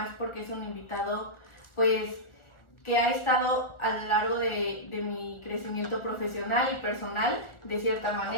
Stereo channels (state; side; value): late; right; 1.4 ms